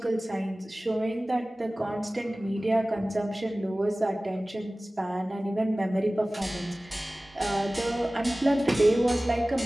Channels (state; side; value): normal; both; correlation 0.98